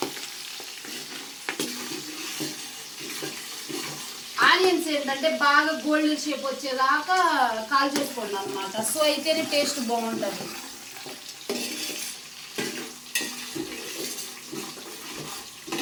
ఆనియన్స్ ఏంటంటే బాగా గోల్డెన్ షేప్ వచ్చేదాకా కాల్ చేసుకోండి అనమాట. సో అయితేనే టేస్ట్ బాగుంటుంది.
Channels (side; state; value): both; identical; correlation 1.00